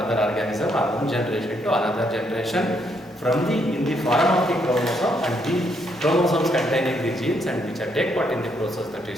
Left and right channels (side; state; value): both; normal; correlation 0.74